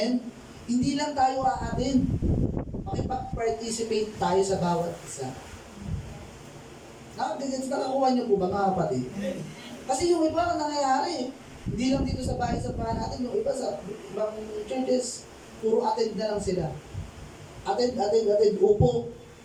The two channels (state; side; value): identical; both; correlation 1.00